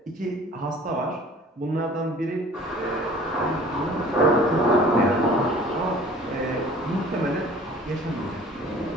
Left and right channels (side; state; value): both; normal; correlation 0.48